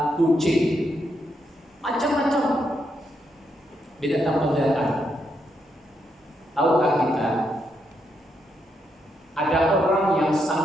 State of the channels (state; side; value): normal; both; correlation 0.80